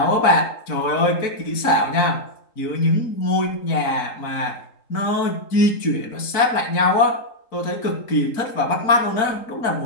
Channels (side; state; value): right; late; 3.8 ms